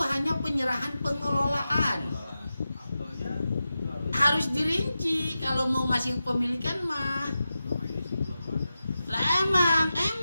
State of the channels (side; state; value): both; inverted; correlation -0.92